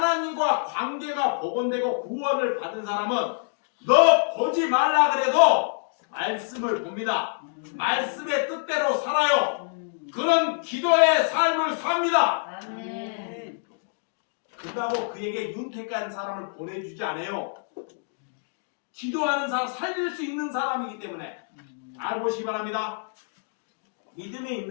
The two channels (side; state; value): right; silent; digital silence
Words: 관계가 복원되고 구원을 받은 사람은 너 보지 말라 그래도 말씀을 봅니다. 말씀의 뜻대로 살아요. 그런 기도의 삶을 삽니다. 아멘. 그렇다고 그에게 윤택한 사람을 보내주지 않아요. 기도하는 사람, 살릴 수 있는 사람이기 때문에 알보시기 바랍니다. 믿음이